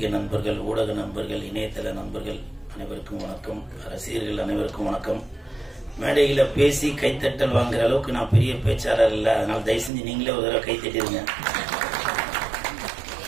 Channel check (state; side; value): drops out; left; at 9.9 s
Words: நண்பர்கள், ஊடக நண்பர்கள், இணையதள நண்பர்கள் அனைவருக்கும் வணக்கம். ரசிகர்கள் அனைவருக்கும் வணக்கம். மேடையில பேசி கைத்தட்டல் வாங்குற அளவுக்கு நான் பெரிய பேச்சாளர் இல்லை, அதனால தயவு செஞ்சு நீங்களே ஒரு தடவை கைத்தட்டிருங்க.